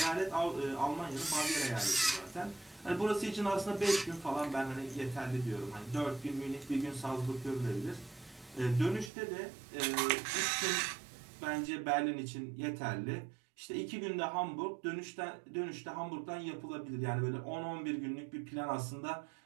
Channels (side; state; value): left; drops out; at 9.1 s